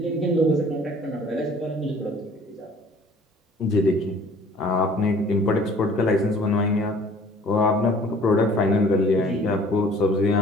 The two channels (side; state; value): both; normal; correlation 0.52